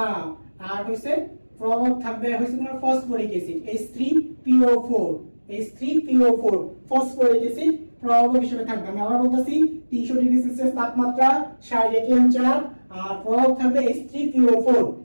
আর হইছে প্রভাব থাকবে হইছে তোমার phosphoric acid H3PO4, H3PO4 phosphoric acid প্রভাব হিসেবে থাকবে। আমি আবার বলতেছি, 300 ডিগ্রি সেলসিয়াস তাপমাত্রা, 60 ATM চাপ, আর প্রভাব থাকবে H3PO4।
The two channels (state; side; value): inverted; both; correlation -1.00